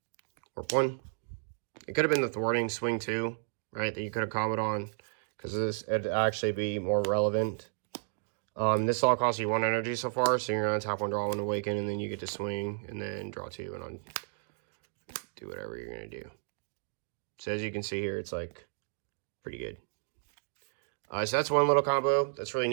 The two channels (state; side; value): silent; left; digital silence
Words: Warp 1. It could have been the thwarting swing 2, right? That you could have comboed on, because this would actually be more relevant. This all costs you 1 energy so far, so you're gonna tap 1, draw 1, awaken, and then you get to swing, and then draw 2, and do whatever you're gonna do. So as you can see here, it's like pretty good. So that's one little combo that's really